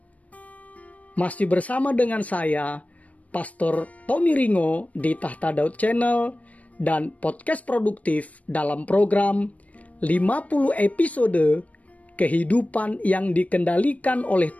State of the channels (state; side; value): late; right; 0.068 ms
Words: Masih bersama dengan saya, Pastor Tommy Ringo di Tahta Daud Channel dan podcast produktif dalam program 50 episode kehidupan yang dikendalikan oleh